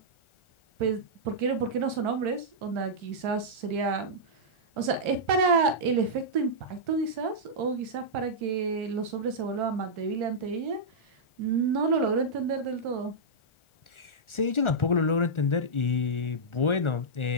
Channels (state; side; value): late; right; 1.4 ms